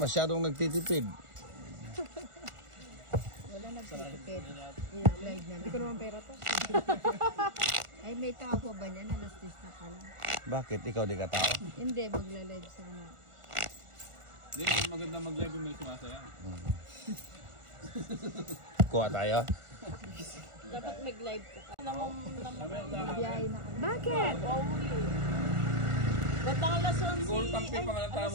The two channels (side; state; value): left; late; 1.4 ms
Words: nagtitipid. Wala nagtitipid. Live na Hindi ko naman pera to. Ay, may tao pa ba niyan? Alas 10 na pala. Bakit? Ikaw di ka tao? Hindi, magla-live sana. Hindi, maganda mag-live yung may sumasaya. Kuha tayo? Dapat mag-live ka. Biyahe na ka. Bakit? Ba't ang alas 11? Siguro tampi pa nga ng